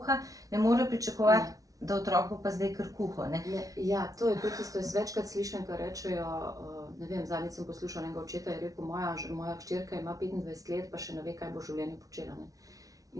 ne more pričakovati, da otrok bo pa zdaj kar kuho. Ja, to je tudi isto, jaz večkrat slišim, kar rečejo, ne vem, zadnjič sem poslušala enega očeta, je rekel, moja hčerka ima 25 let, pa še ne ve, kaj bo v življenju počela. Ne?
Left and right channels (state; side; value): late; left; 0.17 ms